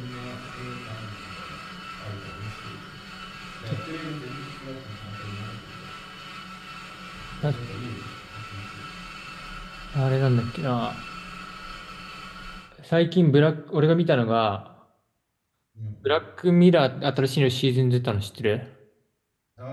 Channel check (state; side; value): identical; both; correlation 1.00